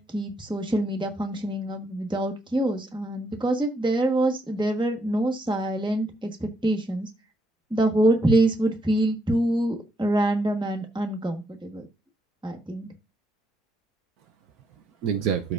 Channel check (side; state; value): both; normal; correlation 0.77